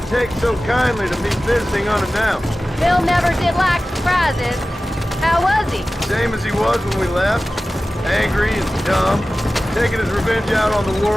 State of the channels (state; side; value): normal; both; correlation 0.96